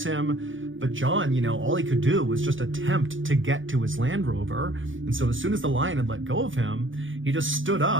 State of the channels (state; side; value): late; left; 0.57 ms